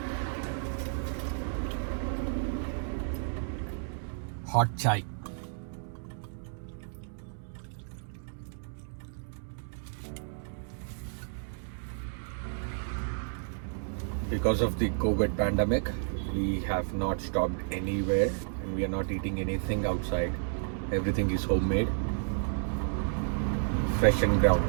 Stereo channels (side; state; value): left; silent; digital silence